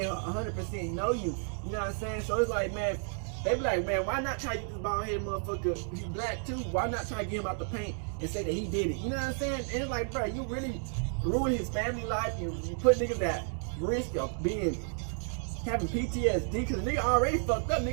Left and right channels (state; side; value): silent; left; 57 dB below the other